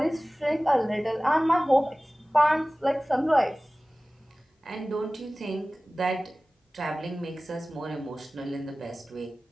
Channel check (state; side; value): normal; both; correlation 0.98